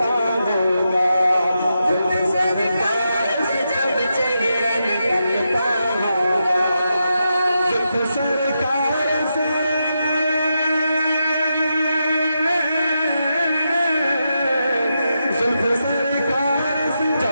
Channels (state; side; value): inverted; both; correlation -0.85